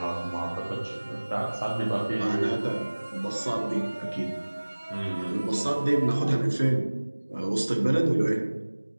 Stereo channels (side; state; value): both; inverted; correlation -1.00